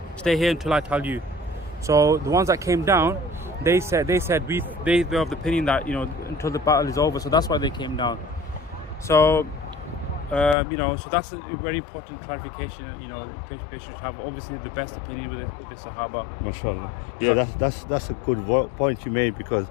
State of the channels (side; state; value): right; drops out; at 10.6 s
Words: stay here until I tell you. So the ones that came down, they said they were of the opinion that, until the battle is over. So that's why they came down. So so that's a very important clarification. They should have obviously the best opinion with the Sahaba. MashaAllah. Yeah, that's a good point you made, because